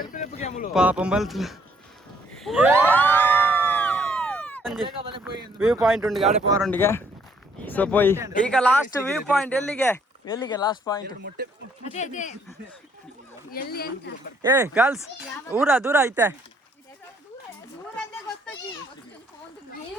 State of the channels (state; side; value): normal; both; correlation 0.66